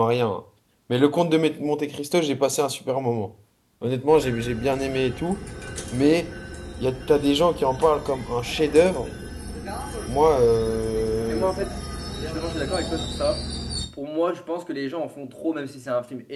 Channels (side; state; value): both; identical; correlation 1.00